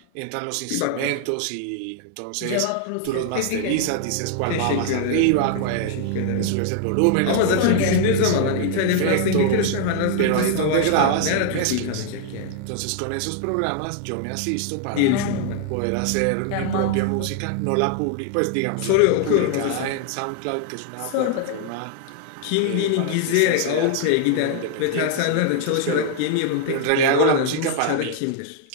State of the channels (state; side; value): different; both; correlation 0.00